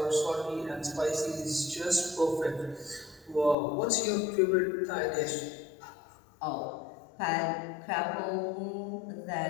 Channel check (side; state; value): right; drops out; at 3.6 s